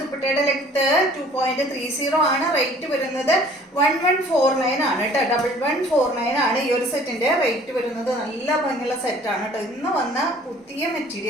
ദുപ്പട്ടയുടെ ലെങ്ത് 2.30 ആണ്. റേറ്റ് വരുന്നത് 1149 ആണ് കേട്ടോ. 1149 ആണ് ഈ ഒരു സെറ്റിന്റെ റേറ്റ് വരുന്നത്. നല്ല ഭംഗിയുള്ള സെറ്റാണ് കേട്ടോ. ഇന്ന് വന്ന പുതിയ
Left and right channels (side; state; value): both; normal; correlation 0.53